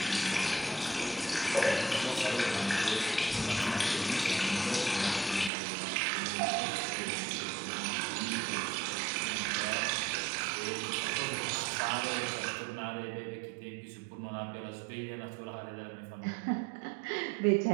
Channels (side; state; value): left; drops out; at 5.5 s